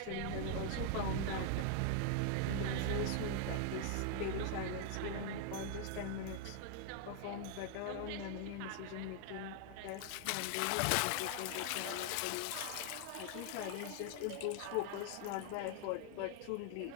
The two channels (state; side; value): different; both; correlation 0.00